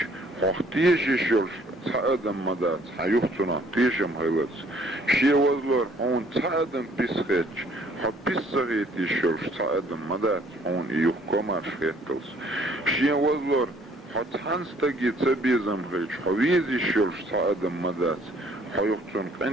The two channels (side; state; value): both; normal; correlation 0.60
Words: خوخ تيشي شلش تأدم مدات حيوختنا تيشم هيلتس شين وزلور هون تأدم بيسخيتش حبيس صغيتي شلش تأدم مدات هون إيوه كومار شخيتلس شين وزلور حتحن ستاقي تبيزم غيش حويزي شلش تأدم مدات حيوختن